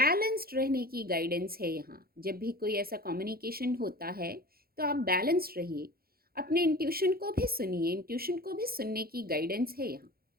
रहने की गाइडेंस है यहाँ। जब भी कोई ऐसा कम्युनिकेशन होता है तो आप बैलेंस्ड रहिए, अपने इंट्यूशन को भी सुनिए, इंट्यूशन को भी सुनने की गाइडेंस है यहाँ।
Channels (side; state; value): left; late; 0.44 ms